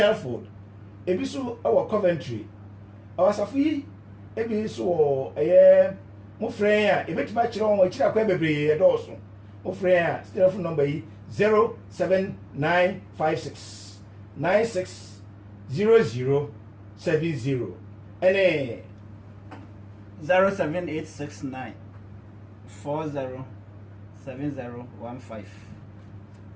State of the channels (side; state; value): both; identical; correlation 1.00